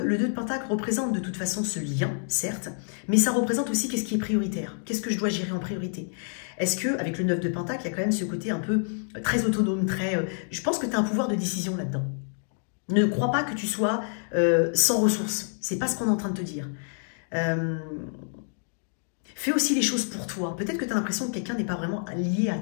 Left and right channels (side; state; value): right; silent; 60 dB below the other